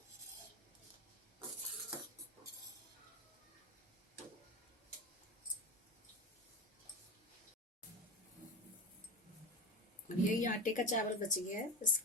अब यही आटे का चावल बच गया है,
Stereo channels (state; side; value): normal; both; correlation 0.24